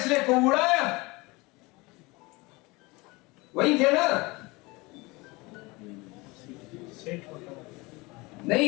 کو اڑایا وہی تھے نا.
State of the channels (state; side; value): quieter; right; 24.0 dB